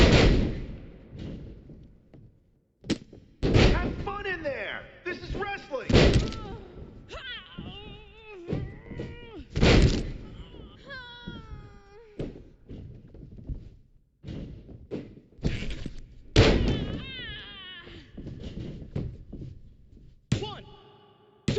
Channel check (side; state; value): both; identical; correlation 1.00